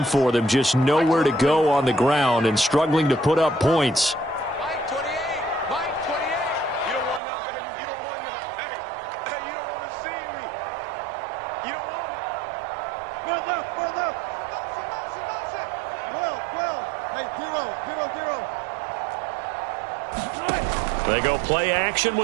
for them. Just nowhere to go on the ground and struggling to put up points. Mike 28. Mike 28. You don't want that. You don't want that. Hey, you don't want to see me. You don't want it. Well, left. Motion. Well. Hey, 0. They go play action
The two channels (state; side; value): drops out; left; at 7.2 s